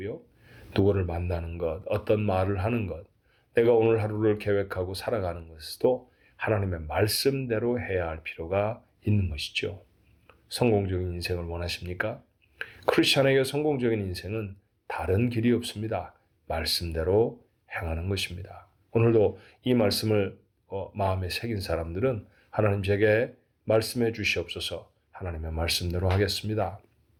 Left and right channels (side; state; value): both; identical; correlation 1.00